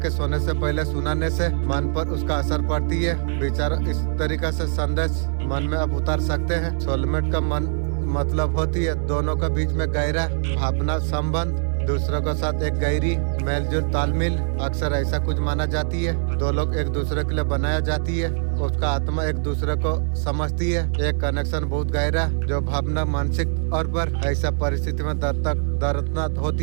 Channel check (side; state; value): left; silent; digital silence